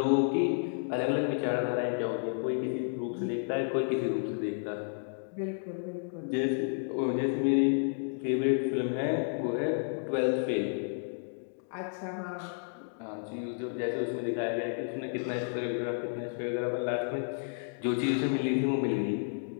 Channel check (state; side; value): silent; right; digital silence